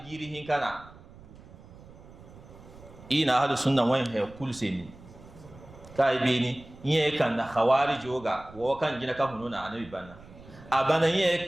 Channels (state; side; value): noise; right; rumble, 20 dB below the sound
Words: giri hinkana ina hadu sunna wan he kul seni kai be ni yin kan da khawarij yoga wo kan gina ka hununa anabi banna abana yin